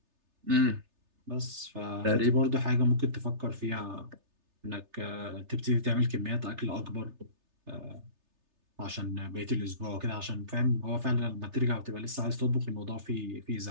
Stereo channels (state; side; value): late; left; 3.3 ms